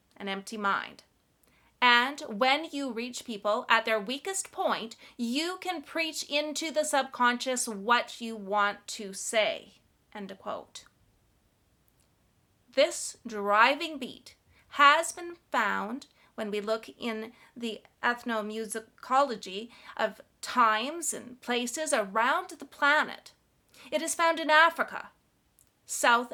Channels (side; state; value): both; identical; correlation 1.00